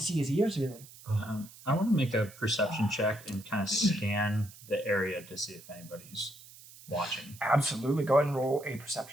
his ears really. I want to make a perception check and kind of scan the area to see if anybody's watching. Absolutely. Go ahead and roll a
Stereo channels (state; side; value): noise; right; hiss, 19 dB below the sound